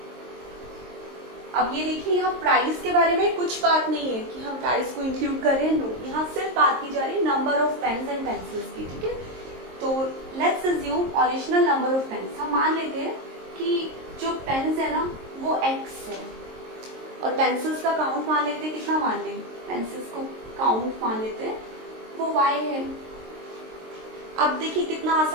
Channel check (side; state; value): left; late; 23 ms